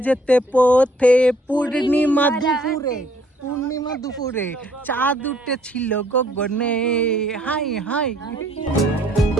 যেতে পথে পূর্ণিমা দুপুরে চাঁদ উঠেছিল গগনে। Hi hi.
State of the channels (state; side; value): normal; both; correlation 0.62